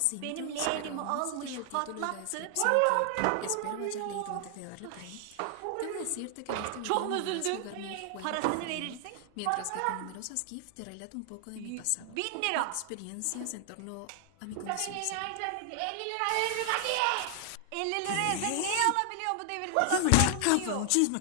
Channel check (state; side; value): different; both; correlation 0.00